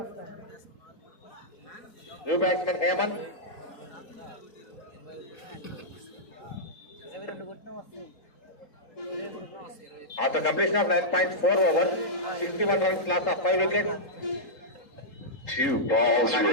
New batsmen Hemant. After completion of 9.4 overs, 61 runs loss of 5 wickets. 2 balls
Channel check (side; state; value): right; late; 3.8 ms